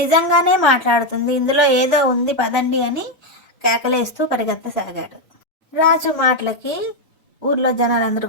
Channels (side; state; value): both; normal; correlation 0.04